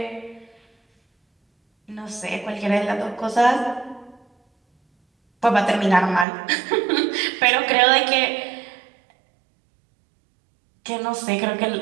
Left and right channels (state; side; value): drops out; left; at 6.2 s